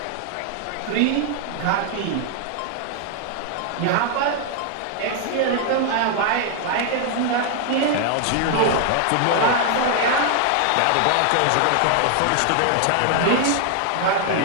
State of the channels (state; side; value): different; both; correlation 0.00